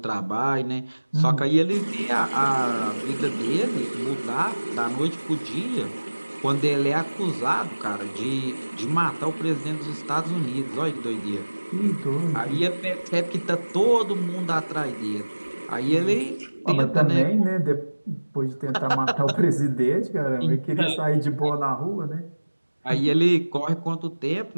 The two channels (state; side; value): inverted; both; correlation -1.00